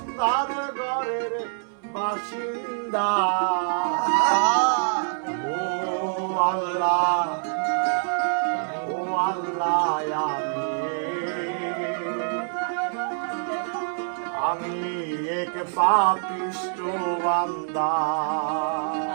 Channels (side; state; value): left; silent; 61 dB below the other